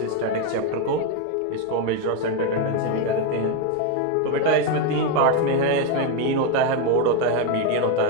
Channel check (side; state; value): both; different; correlation 0.02